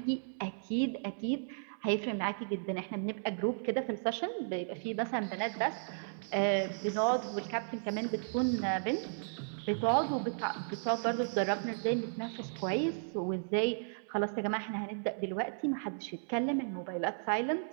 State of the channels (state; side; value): silent; left; 55 dB below the other